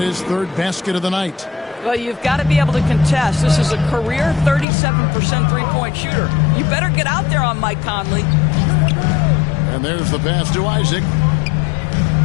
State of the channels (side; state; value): right; drops out; at 4.7 s